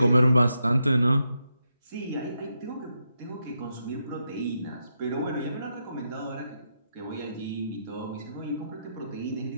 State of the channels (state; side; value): inverted; both; correlation -0.83